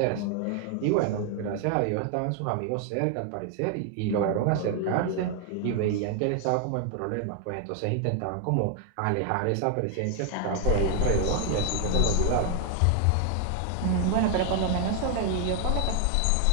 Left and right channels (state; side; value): different; both; correlation 0.00